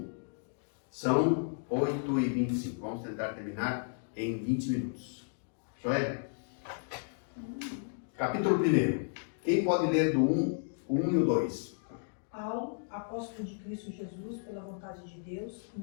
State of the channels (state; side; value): silent; right; digital silence